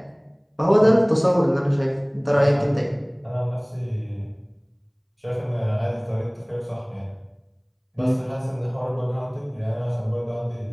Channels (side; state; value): both; identical; correlation 1.00